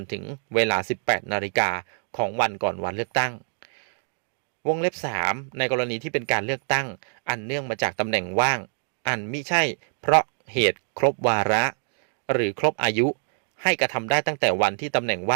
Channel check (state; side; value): silent; left; digital silence